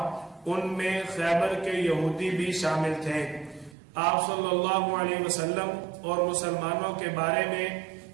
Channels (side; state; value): left; drops out; at 3.8 s